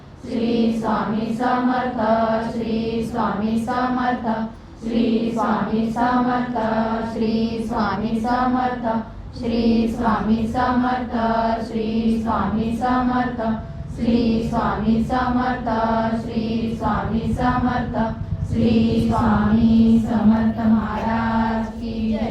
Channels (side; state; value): both; identical; correlation 1.00